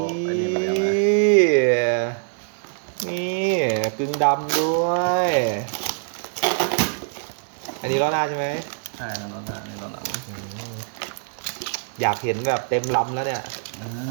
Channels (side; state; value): left; silent; digital silence